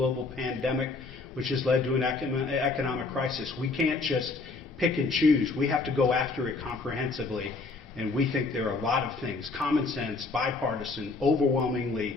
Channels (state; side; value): quieter; right; 3.8 dB